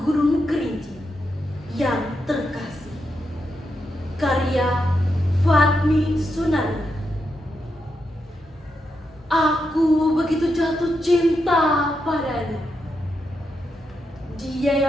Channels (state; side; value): normal; both; correlation 0.84